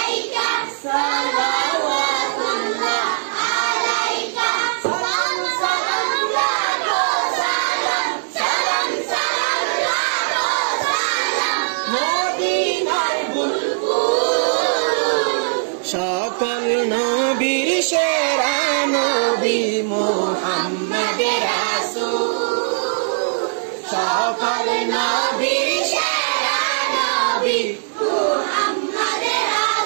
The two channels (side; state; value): left; silent; 66 dB below the other